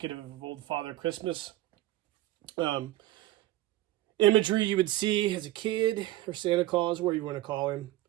of old Father Christmas. Imagery you would see as a kid, or Santa Claus, where you want to call him.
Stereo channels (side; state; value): left; quieter; 15.5 dB